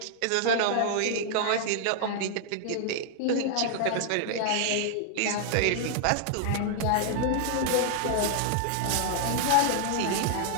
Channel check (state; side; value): different; both; correlation 0.00